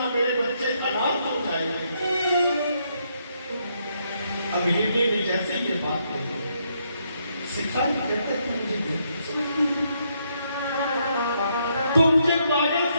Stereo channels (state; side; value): inverted; both; correlation -0.75